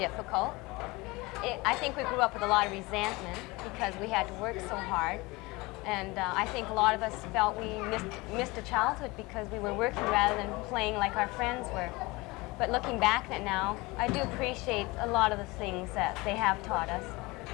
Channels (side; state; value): right; quieter; 23.2 dB